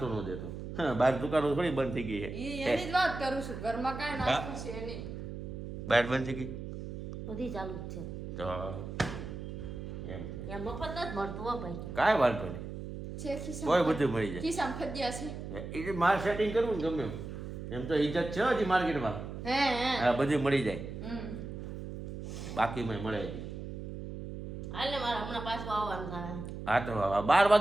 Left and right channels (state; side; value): noise; right; hum, 8 dB below the sound